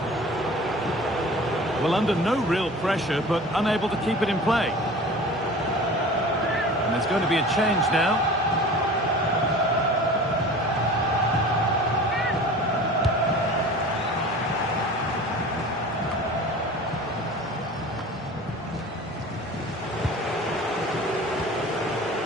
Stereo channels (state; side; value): normal; both; correlation 0.40